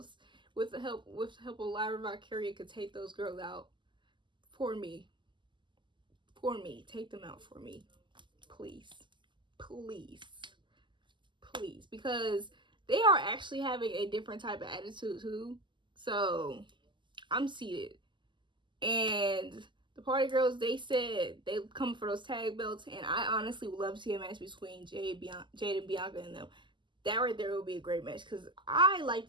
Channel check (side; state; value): left; late; 0.23 ms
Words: with the help of Lyra Valkyria, could take those girls out for me. Take them out for me. Please. Because they are actually having a different type of attitude too. So I'm seated. And the party girls, they said they come for those tag belts, and I honestly would love to see a match between Jade and Bianca and them. That right there would be a great match, because I like